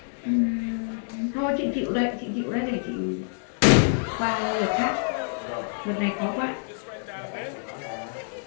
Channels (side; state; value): right; silent; 60 dB below the other